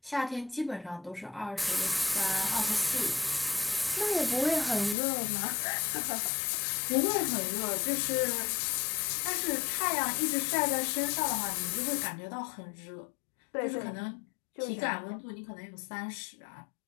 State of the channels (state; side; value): drops out; right; at 5.0 s